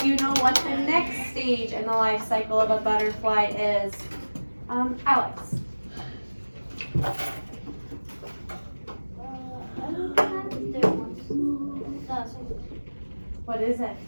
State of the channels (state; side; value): inverted; both; correlation -1.00